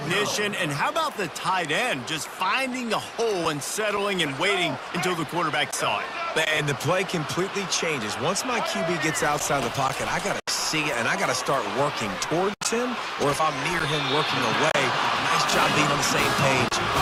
And how about the tight end just finding a hole and settling and waiting until the quarterback saw it? And the play completely changes. Once my QB gets outside the pocket, I got to see it, and I got to start working towards him, or if I'm near him working away, nice job being on the same page,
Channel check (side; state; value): both; identical; correlation 1.00